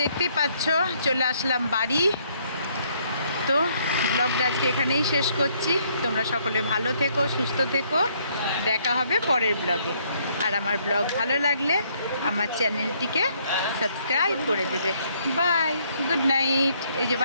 দেখতেই পাচ্ছ চলে আসলাম বাড়ি। তো ব্লগটা আজকে এখানেই শেষ করছি। তোমরা সকলে ভালো থেকো, সুস্থ থেকো। দেখা হবে পরের ব্লগে। আর আমার ব্লগ ভালো লাগলে আমার চ্যানেলটিকে সাবস্ক্রাইব করে দেবে। Bye, good night. এই যে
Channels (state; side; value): inverted; both; correlation -0.68